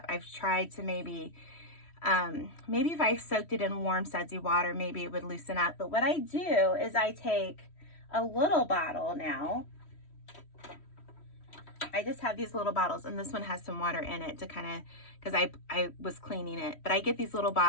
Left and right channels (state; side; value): late; right; 3.1 ms